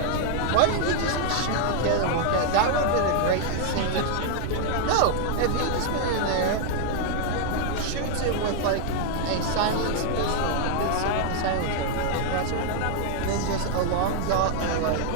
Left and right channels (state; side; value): different; both; correlation 0.00